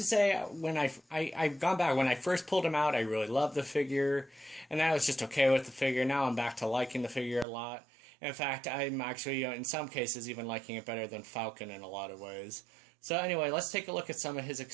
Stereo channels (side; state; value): left; drops out; at 7.5 s